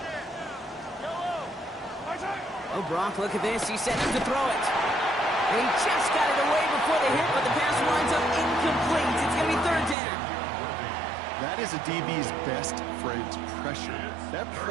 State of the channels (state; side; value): drops out; left; at 10.0 s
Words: Oh, Brock, look at this. He set him to throw it. And he just got it away before the hit, but the pass winds up incomplete. It's going to be 3rd down. That is a DB's best friend, pressure. That